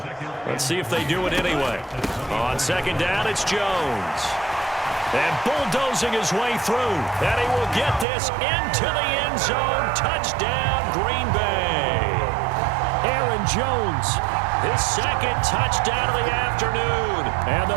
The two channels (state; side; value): drops out; left; at 8.1 s